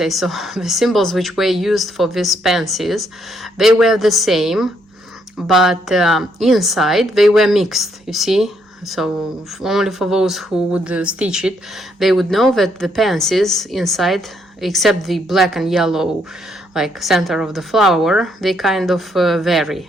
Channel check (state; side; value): normal; both; correlation 0.73